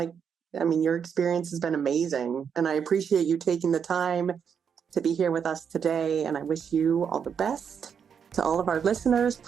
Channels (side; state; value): left; quieter; 7.2 dB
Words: experience has been amazing, and I appreciate you taking the time to be here with us today, and I wish you all the best. To all of our listeners,